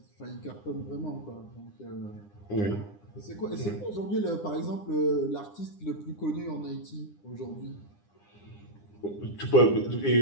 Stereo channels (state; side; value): late; right; 9.9 ms